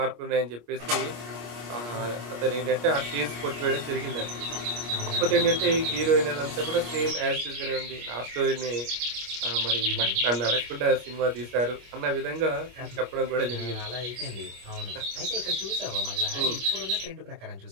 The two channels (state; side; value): late; left; 25 ms